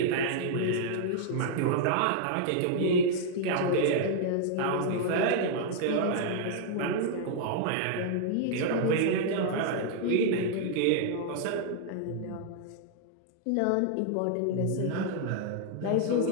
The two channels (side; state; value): both; different; correlation -0.01